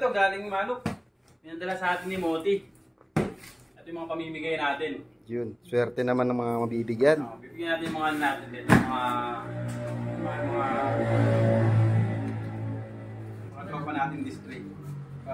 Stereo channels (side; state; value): both; identical; correlation 1.00